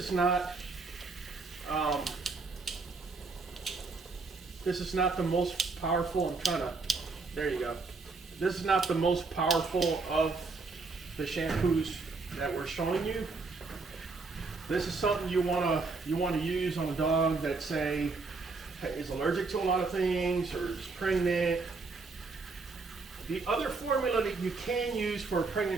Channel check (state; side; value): quieter; left; 4.0 dB